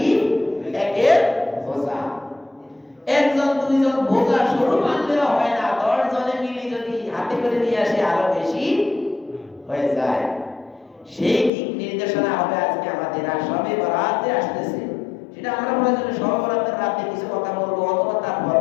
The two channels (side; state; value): right; drops out; at 11.5 s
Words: একের বোঝা। একজন দুইজন বোঝা শুরু মানলেও হয় না, 10 জনে মিলে যদি হাতে করে নিয়ে আসে আরো বেশি হয়ে যায়। সেই দিক নির্দেশনা হবে আজকে আমাদের। আর সবে বরাতে আসতেছে, সেটা আমরা প্রয়োজনে সবে বরাতের রাতে কিছু কথা বলবো, অথবা তার